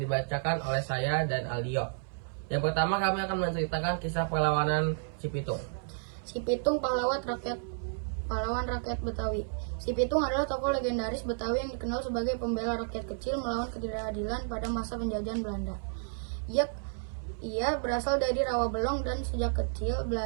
dibacakan oleh saya dan Aldio. Yang pertama, kami akan menceritakan kisah perlawanan Cipitung. Cipitung, pahlawan rakyat Betawi. Cipitung adalah tokoh legendaris Betawi yang dikenal sebagai pembela rakyat kecil melawan ketidakadilan pada masa penjajahan Belanda. Ia berasal dari Rawabelong dan sejak kecil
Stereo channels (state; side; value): silent; left; 56 dB below the other